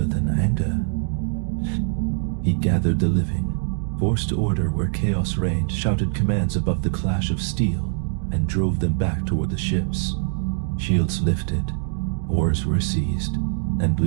than anger. He gathered the living, forced order where chaos reigned, shouted commands above the clash of steel, and drove them back toward the ships. Shields lifted, oars were seized, and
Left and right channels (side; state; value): left; silent; digital silence